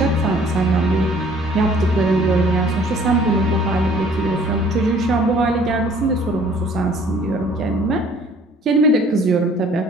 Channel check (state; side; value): normal; both; correlation 0.55